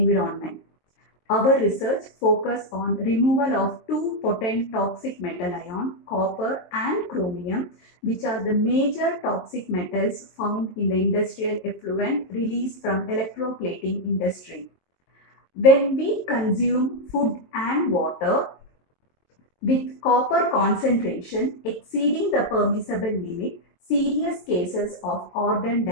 Our research focused on removal of two potent toxic metal ion, copper and chromium, which are the major toxic metals found in the industrial effluent released from electroplating industry. When we consume food and water with copper concentration exceeding the permissible limit, serious cases of organ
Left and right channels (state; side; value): late; right; 22 ms